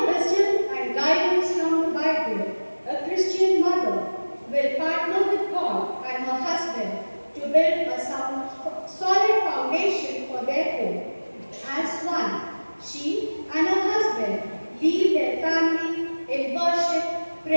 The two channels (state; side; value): inverted; both; correlation -1.00